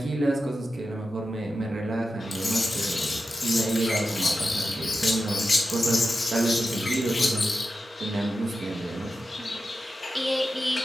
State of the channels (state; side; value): normal; both; correlation 0.91